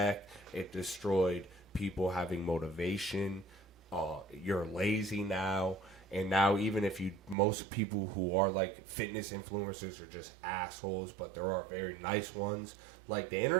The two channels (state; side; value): drops out; left; at 7.4 s